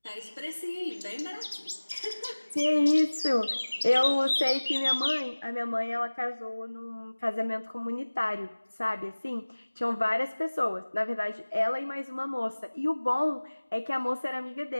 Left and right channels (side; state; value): both; inverted; correlation -1.00